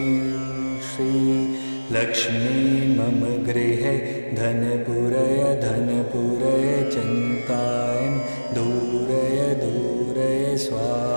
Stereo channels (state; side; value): inverted; both; correlation -1.00